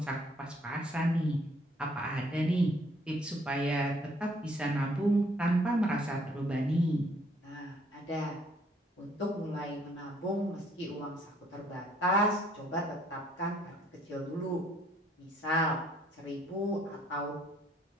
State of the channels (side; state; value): both; normal; correlation 0.64